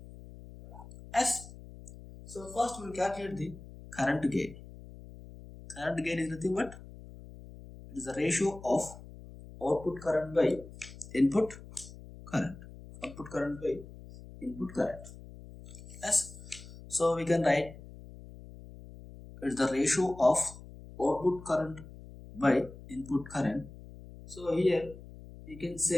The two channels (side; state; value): left; noise; hum, 16 dB below the sound